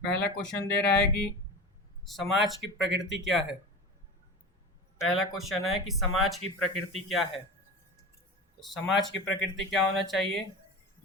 पहला क्वेश्चन दे रहा है कि समाज की प्रकृति क्या है। पहला क्वेश्चन है कि समाज की प्रकृति क्या है। तो समाज की प्रकृति क्या होना चाहिए?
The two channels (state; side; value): normal; both; correlation 0.30